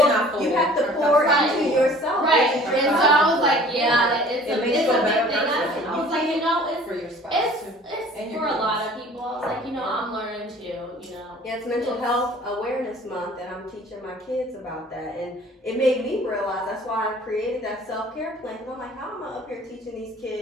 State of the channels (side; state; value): both; normal; correlation 0.49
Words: pour into yourself. Right. And so I was like, yeah, it's a big thing. I was like, it's for your spouse it's for a lot of people. I was like, I'm learning too, Yeah, it's Mental Health Awareness Month, and I'm teaching my kids about that. And it made me realize that's why I created that self-care plan. Because I'm like, how am I up here teaching these